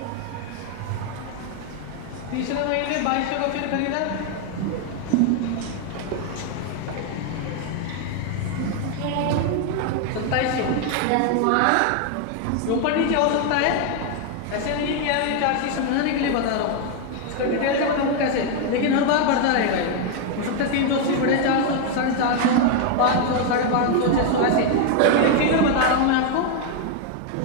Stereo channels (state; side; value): different; both; correlation 0.01